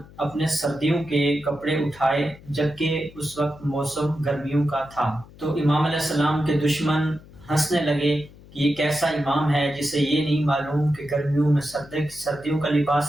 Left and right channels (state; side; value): noise; left; hum, 22 dB below the sound